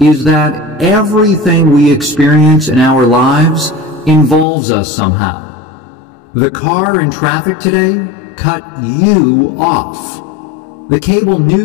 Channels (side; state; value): right; drops out; at 4.5 s